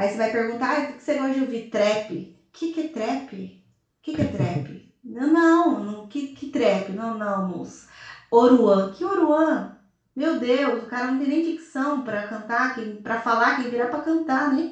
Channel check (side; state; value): both; identical; correlation 1.00